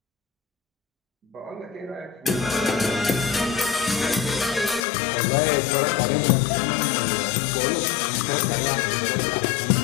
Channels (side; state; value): right; drops out; at 4.9 s